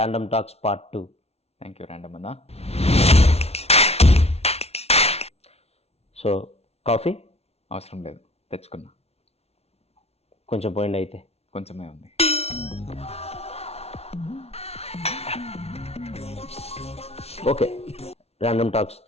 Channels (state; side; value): late; right; 0.30 ms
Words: talks part 2. Thank you random అన్న. సో కాఫీ అవసరం లేదు, తెచ్చుకున్నా. కొంచెం పోయింది అయితే. కొంచెమే ఉంది. ఓకే, ర్యాండమ్ టాక్స్